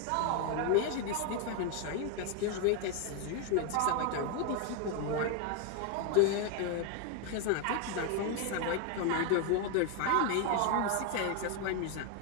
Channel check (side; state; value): both; different; correlation 0.01